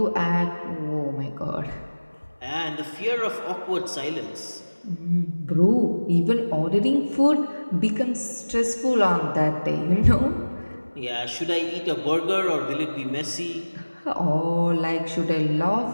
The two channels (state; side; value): inverted; both; correlation -1.00